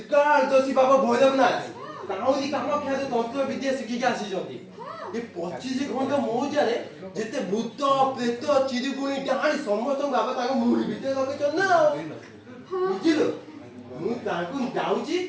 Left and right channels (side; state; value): both; identical; correlation 1.00